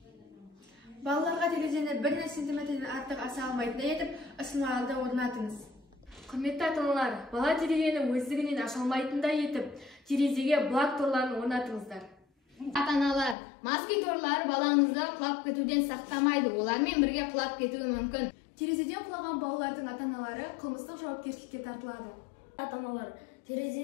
Балаларға терезені 1 сантиметрден артық аса алмайтындай етіп, ысырмаларды орнатыңыз. Құрметті ата-аналар, бала терезені өздігінен аша алмайтындай етіп, терезеге блок торларын орнатыңыздар. Ата-аналар, москит торлары балаңызды құлап кетуден сақтамайды, олармен бірге құлап кетуі мүмкін. Терезеден құлаған балалардың ата-аналары қылмыстық жауапкершілікке тартылады. Ата-аналар,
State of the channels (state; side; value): drops out; right; at 13.4 s